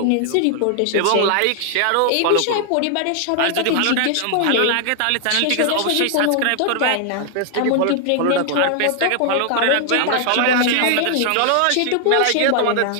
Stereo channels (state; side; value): different; both; correlation 0.00